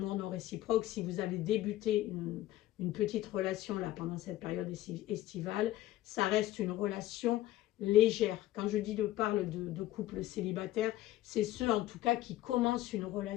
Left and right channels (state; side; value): quieter; right; 14.8 dB